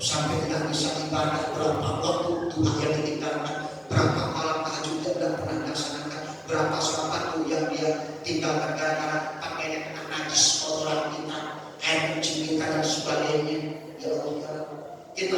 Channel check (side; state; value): both; identical; correlation 1.00